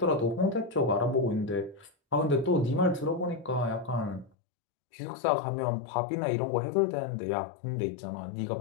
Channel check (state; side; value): drops out; right; at 4.3 s